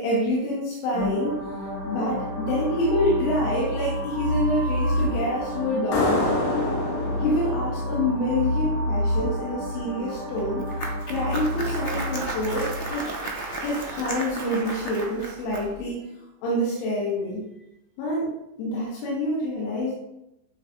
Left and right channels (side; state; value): right; late; 23 ms